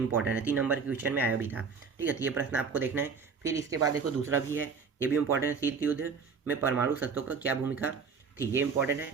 है, 3 नंबर के क्वेश्चन में आया भी था, ठीक है। तो ये प्रश्न आपको देखना है। फिर इसके बाद देखो दूसरा भी है, ये भी इंपॉर्टेंट है, शीत युद्ध में परमाणु शस्त्रों का क्या भूमिका थी, ये इंपॉर्टेंट है।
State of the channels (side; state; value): left; quieter; 5.5 dB